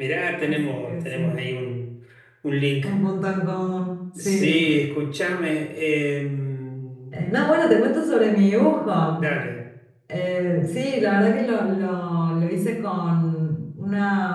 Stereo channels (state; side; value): identical; both; correlation 1.00